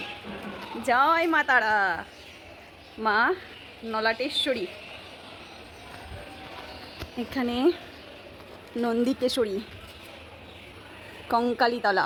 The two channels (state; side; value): identical; both; correlation 1.00